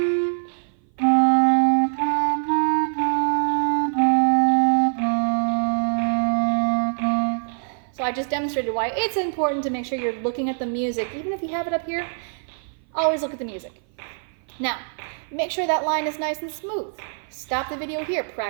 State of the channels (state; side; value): silent; left; 57 dB below the other